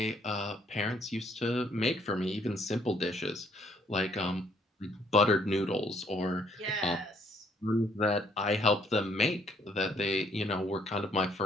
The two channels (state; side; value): normal; both; correlation 0.66